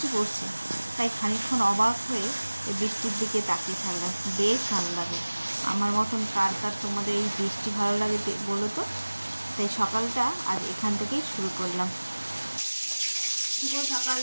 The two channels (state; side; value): inverted; both; correlation -1.00